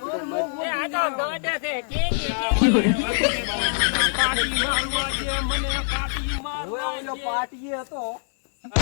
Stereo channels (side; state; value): right; silent; digital silence